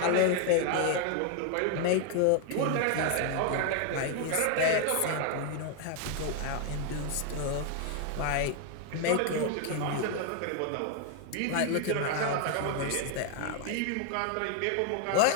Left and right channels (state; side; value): different; both; correlation 0.00